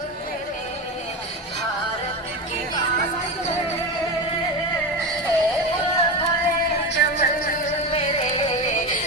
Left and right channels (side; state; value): both; normal; correlation 0.20